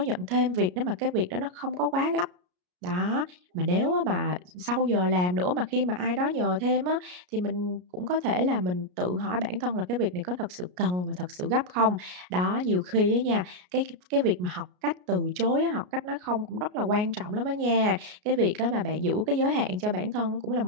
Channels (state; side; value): late; left; 33 ms